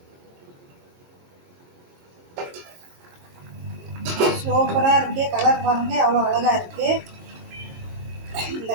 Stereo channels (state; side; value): late; left; 22 ms